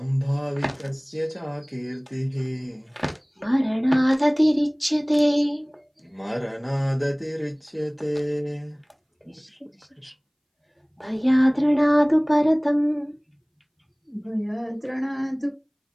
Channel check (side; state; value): both; identical; correlation 1.00